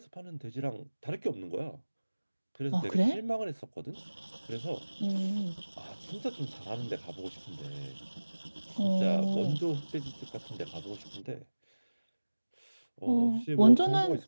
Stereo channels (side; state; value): both; inverted; correlation -1.00